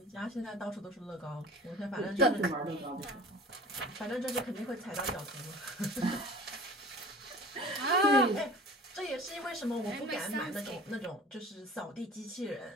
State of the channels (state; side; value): normal; both; correlation 0.42